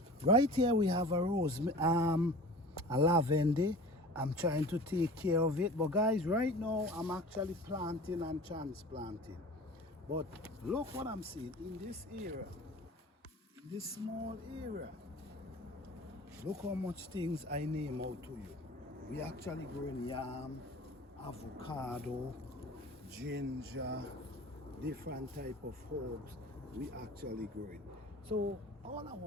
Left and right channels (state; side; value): normal; both; correlation 0.40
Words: Right here we have a a lavender. I'm trying to take care of it, but guys, right now I'm actually planting and transplanting. But look what I'm seeing in this area, in this small area. Look how much things I name out to you. We actually growing yam, avocado, ginger, different type of herbs we actually growing. So all I